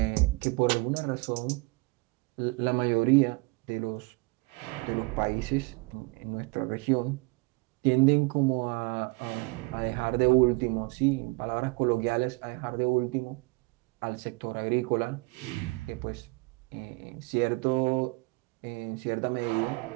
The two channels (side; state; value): left; quieter; 27.9 dB